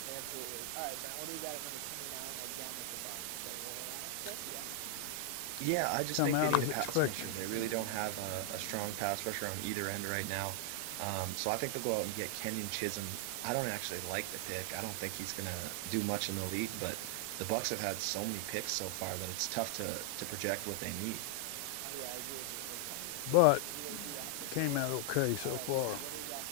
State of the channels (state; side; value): different; both; correlation 0.00